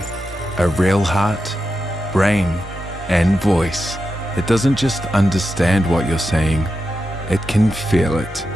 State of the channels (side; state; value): both; normal; correlation 0.89